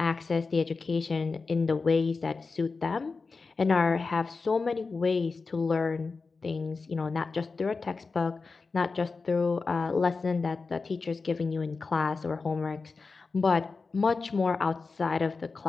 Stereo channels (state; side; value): quieter; right; 4.3 dB